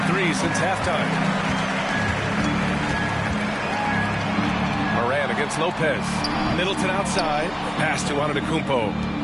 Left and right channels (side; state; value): both; identical; correlation 1.00